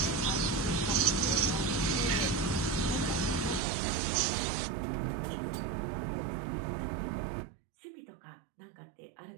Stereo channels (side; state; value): left; drops out; at 3.6 s